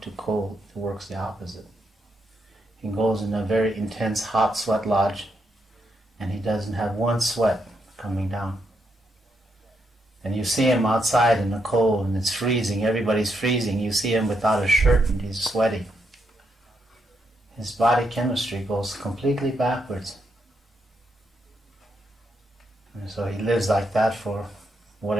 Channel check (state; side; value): normal; both; correlation 0.80